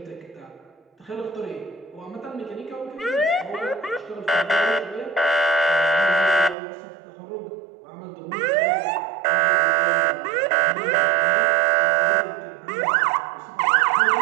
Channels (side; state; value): left; drops out; at 6.6 s